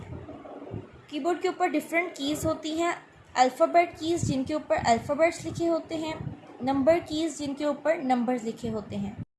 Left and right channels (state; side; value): identical; both; correlation 1.00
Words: कीबोर्ड के ऊपर डिफरेंट कीज़ होती हैं, अल्फ़ाबेट कीज़ जिनके ऊपर अल्फ़ाबेट्स लिखे होते हैं, नंबर कीज़ जिनके ऊपर नंबर्स लिखे होते हैं।